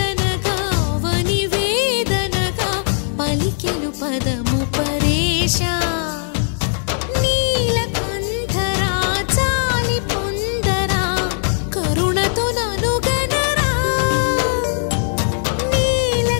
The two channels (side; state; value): right; silent; digital silence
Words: అవనివేదనగా పలికెను పదము పరేశా నీలకంఠరా చాలి పొందరా కరుణతో ననుగనరా